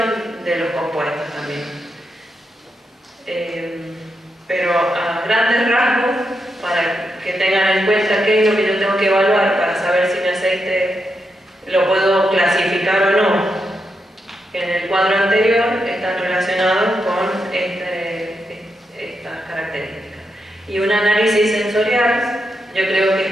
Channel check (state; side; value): normal; both; correlation 0.84